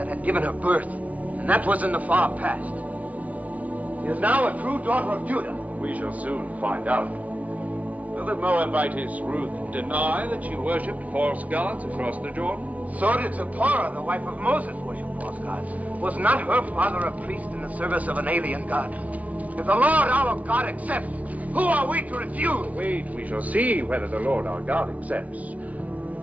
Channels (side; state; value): left; late; 0.069 ms